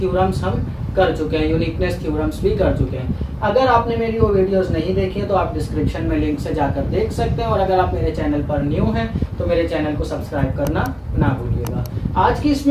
हम कर चुके हैं, यूनिकनेस थ्योरम्स भी कर चुके हैं। अगर आपने मेरी वो वीडियोस नहीं देखी है तो आप डिस्क्रिप्शन में लिंक से जाकर देख सकते हैं, और अगर आप मेरे चैनल पर न्यू हैं तो मेरे चैनल को सब्सक्राइब करना ना भूलिएगा। आज की इस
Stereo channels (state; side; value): identical; both; correlation 1.00